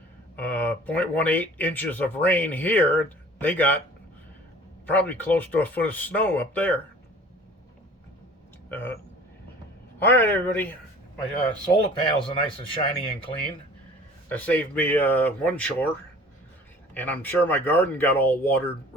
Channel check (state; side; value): normal; both; correlation 0.47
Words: 0.18 inches of rain here. They got probably close to a foot of snow up there. All right, everybody. My solar panels are nice and shiny and clean. That saved me one chore. And I'm sure my garden got all watered